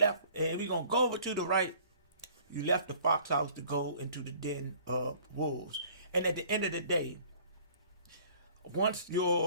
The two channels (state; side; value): inverted; both; correlation -0.53